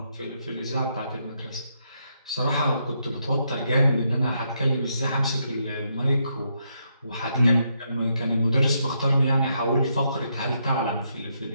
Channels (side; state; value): both; inverted; correlation -0.78